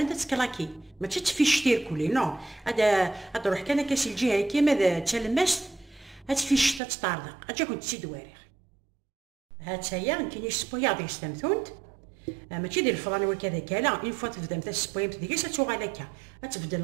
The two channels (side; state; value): left; drops out; at 6.8 s